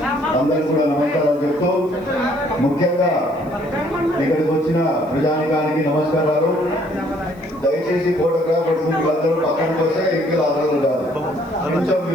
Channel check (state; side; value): noise; right; hiss, 30 dB below the sound